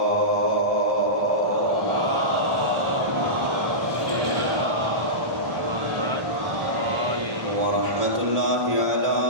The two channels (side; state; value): left; late; 1.3 ms